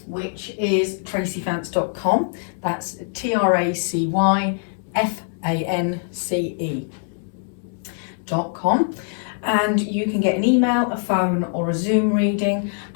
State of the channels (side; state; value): right; silent; 64 dB below the other